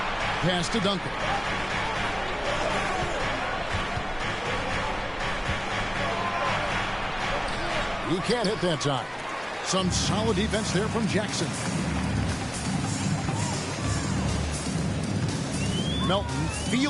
Pass to Duncan. He can't hit that time. Some solid defense there from Jackson. Melton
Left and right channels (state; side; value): identical; both; correlation 1.00